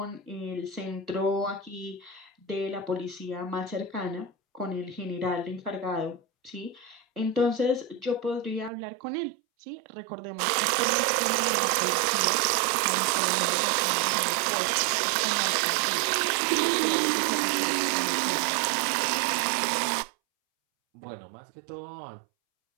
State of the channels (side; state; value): left; drops out; at 8.7 s